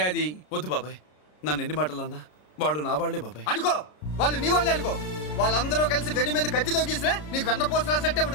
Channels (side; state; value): right; late; 33 ms